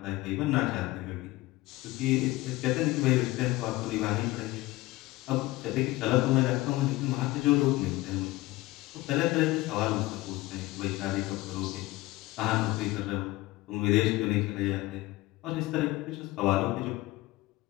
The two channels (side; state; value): right; quieter; 19.2 dB